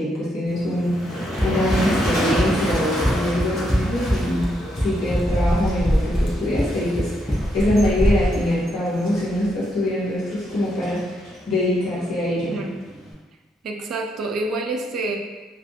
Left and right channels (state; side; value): normal; both; correlation 0.78